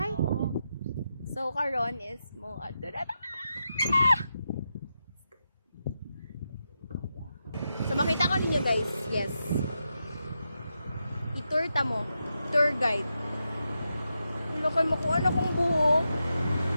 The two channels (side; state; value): both; inverted; correlation -0.87